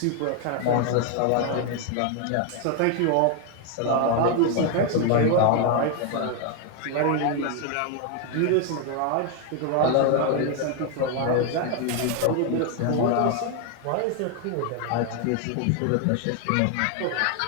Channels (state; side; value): different; both; correlation 0.01